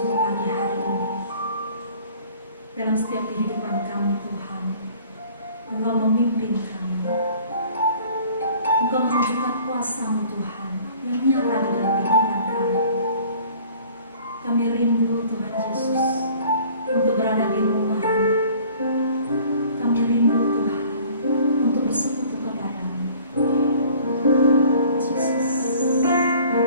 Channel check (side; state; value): both; inverted; correlation -0.51